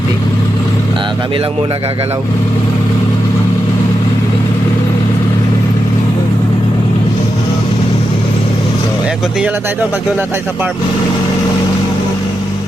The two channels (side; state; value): both; normal; correlation 0.87